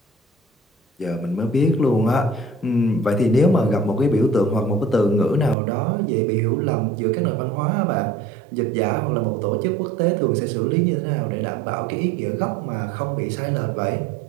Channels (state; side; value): drops out; left; at 5.6 s